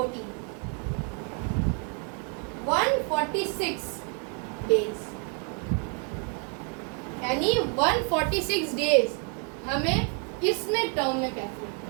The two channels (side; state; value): left; quieter; 39.5 dB